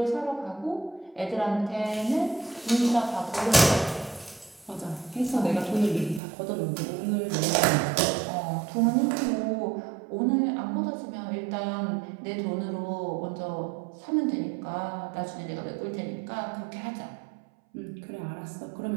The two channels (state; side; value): drops out; left; at 6.2 s